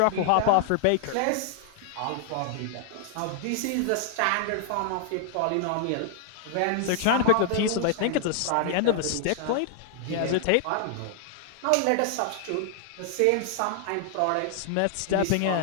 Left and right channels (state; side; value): different; both; correlation -0.01